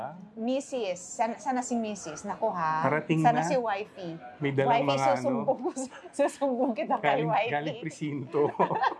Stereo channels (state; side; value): identical; both; correlation 1.00